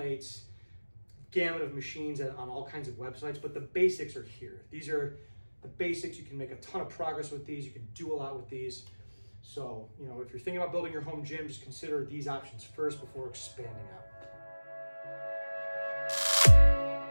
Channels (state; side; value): inverted; both; correlation -1.00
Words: gamut of machines on all kinds of websites, but the basics are here. These are the basics. You can make a ton of progress with these. You can do a lot with these. So, if you're thinking about building your home gym, just consider these options first before expanding out.